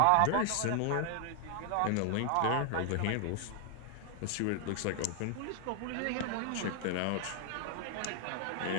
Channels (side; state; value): both; different; correlation 0.00